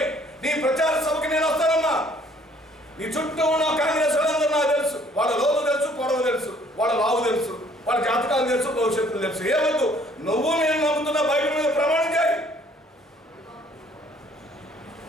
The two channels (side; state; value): both; normal; correlation 0.60